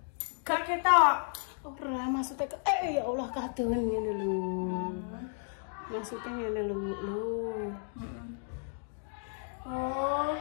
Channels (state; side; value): silent; right; 56 dB below the other